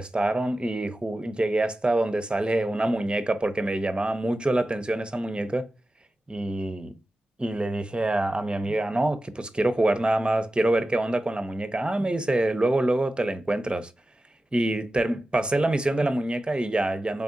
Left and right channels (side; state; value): both; normal; correlation 0.94